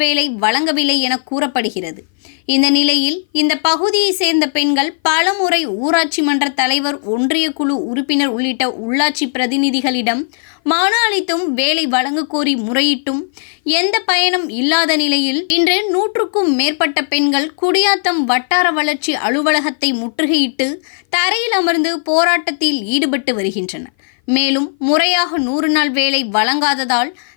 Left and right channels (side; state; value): right; silent; 57 dB below the other